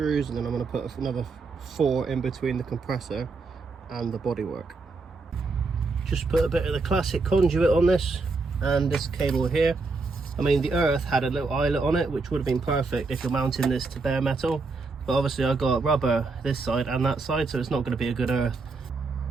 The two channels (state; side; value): quieter; left; 4.0 dB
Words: and then I'm going to put another 4 in between the compressor and the bodywork. Just put a bit of the classic conduit on this and this cable here. I mean, the Earth had a little eyelet on it, which would have been perfect if you're mounting this to bare metal, but obviously I got rubber this side and that side, so it's not going to be a good Earth.